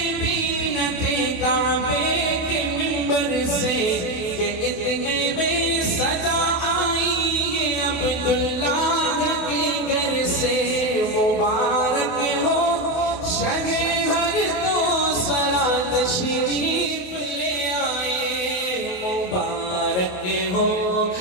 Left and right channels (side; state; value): right; late; 28 ms